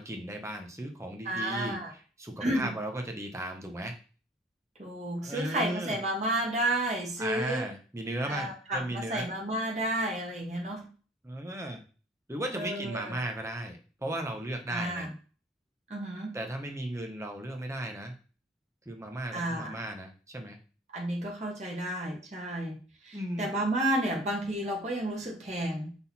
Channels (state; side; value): normal; both; correlation 0.49